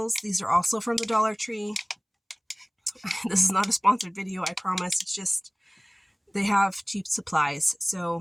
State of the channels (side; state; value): both; identical; correlation 1.00